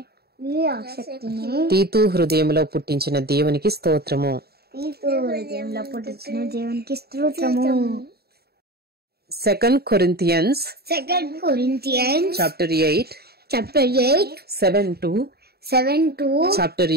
తీతు హృదయంలో పుట్టించిన దేవునికి స్తోత్రము. 2 Corinthians chapter 8 7 to chapter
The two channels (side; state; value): left; late; 0.46 ms